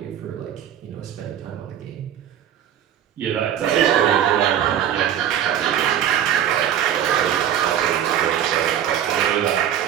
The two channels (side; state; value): left; quieter; 10.1 dB